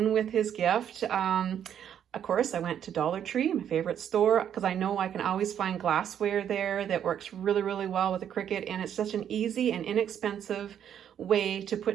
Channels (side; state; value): left; quieter; 9.4 dB